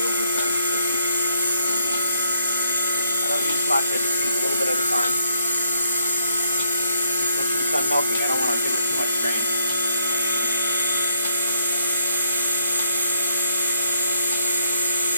will return. So I don't use much, I just use a little bit at a time. Once she's done milking, I don't want to give her too much grain.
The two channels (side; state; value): both; inverted; correlation -0.73